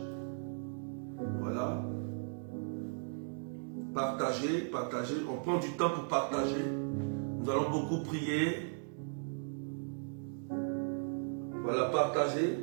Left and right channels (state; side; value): silent; left; digital silence